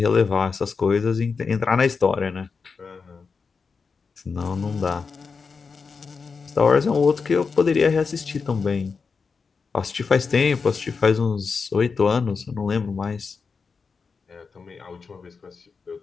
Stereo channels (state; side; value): quieter; right; 5.1 dB